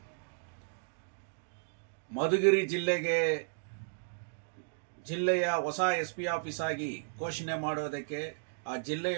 ಮಧುಗಿರಿ ಜಿಲ್ಲೆಯ ಹೊಸ SP ಆಫೀಸ್ ಆಗಿ ಘೋಷಣೆ ಮಾಡುವುದಕ್ಕೆ, ಆ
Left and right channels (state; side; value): silent; left; digital silence